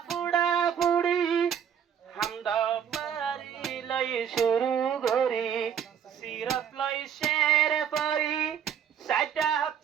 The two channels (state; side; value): quieter; left; 8.4 dB